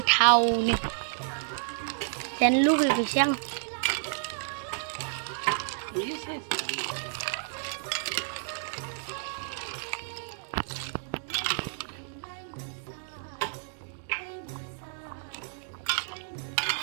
जानो लुबैबायसो आं।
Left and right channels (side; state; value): left; silent; digital silence